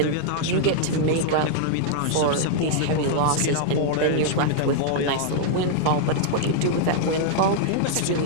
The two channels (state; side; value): different; both; correlation -0.01